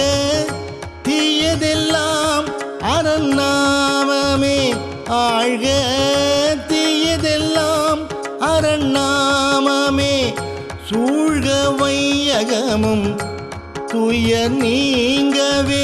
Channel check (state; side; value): identical; both; correlation 1.00